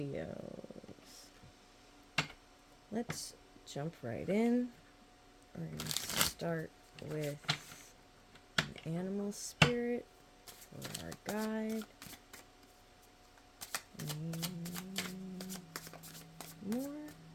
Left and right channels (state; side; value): identical; both; correlation 1.00